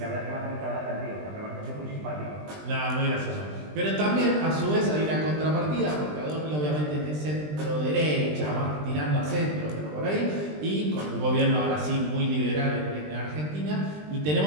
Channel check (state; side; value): late; left; 20 ms